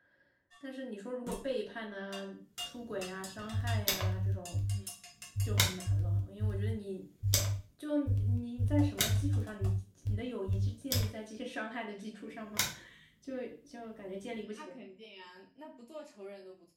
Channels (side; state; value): both; identical; correlation 1.00